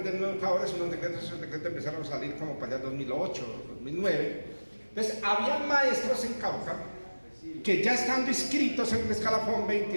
De educadores, unos decretos, esos decretos empezaron a salir como para allá 2008, 2009, Entonces, había maestros en Cauca que ya estando inscritos en el escalafón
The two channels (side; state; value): both; inverted; correlation -1.00